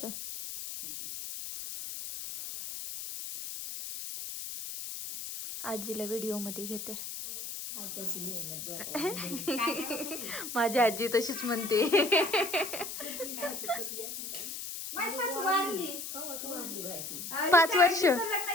आजीला व्हिडिओ मध्ये घेते. माझी आजी तशीच म्हणते. माझी सासू वारली. 5 वर्ष. हिचं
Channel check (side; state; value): left; noise; hiss, 7 dB below the sound